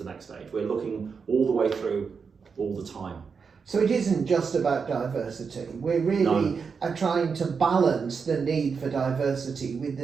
next stage. We're looking all the way through all the time. So it isn't just about diversity. We're really trying to balance the need for diversity with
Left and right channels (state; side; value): quieter; left; 5.6 dB